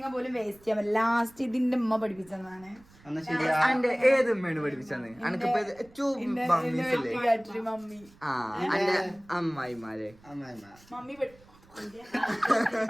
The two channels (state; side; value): noise; right; rumble, 27 dB below the sound